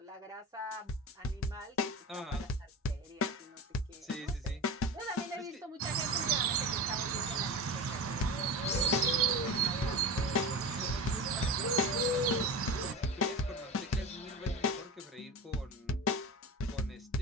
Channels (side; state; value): both; normal; correlation 0.27